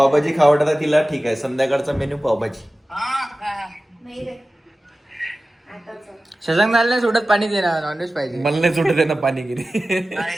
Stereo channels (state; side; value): normal; both; correlation 0.96